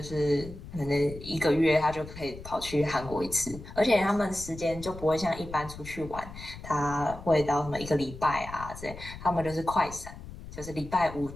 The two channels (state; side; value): noise; left; rumble, 13 dB below the sound